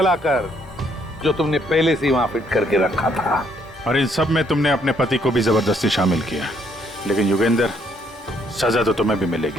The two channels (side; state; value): both; normal; correlation 0.69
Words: जो तुमने पहले से वहां फिट करके रखा था। और इन सब में तुमने अपने पति को भी जबरदस्ती शामिल किया। लेकिन युगेंद्र, सजा तो तुम्हें भी